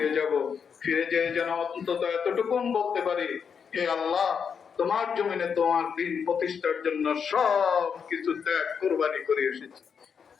যাব, ফিরে যেয়ে যেন অন্তত এতটুকু বলতে পারি, হে আল্লাহ, তোমার জমিনে তোমার দ্বীন প্রতিষ্ঠার জন্য সব কিছু ত্যাগ কুরবানি করে এসেছি।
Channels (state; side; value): quieter; right; 6.7 dB